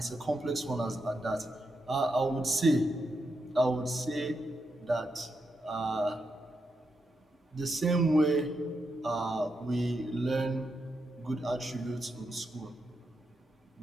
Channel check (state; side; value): normal; both; correlation 0.84